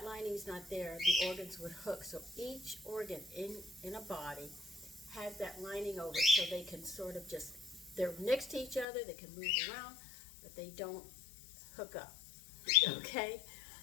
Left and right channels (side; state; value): right; drops out; at 8.8 s